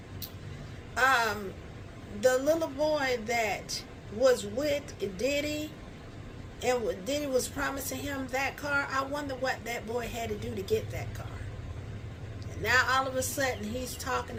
The little boy that was with Diddy and Diddy was promising him that car, I wonder what that boy had to do to get that car. And now all of a sudden he's talking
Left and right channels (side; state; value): both; identical; correlation 1.00